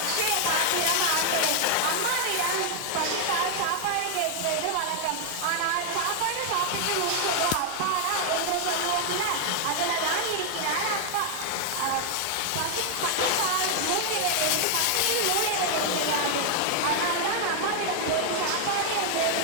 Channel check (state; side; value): different; both; correlation 0.00